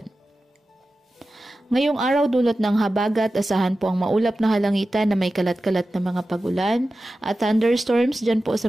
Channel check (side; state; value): both; normal; correlation 0.94